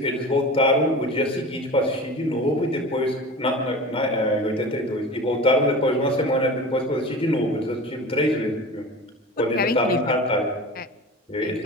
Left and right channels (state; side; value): normal; both; correlation 0.34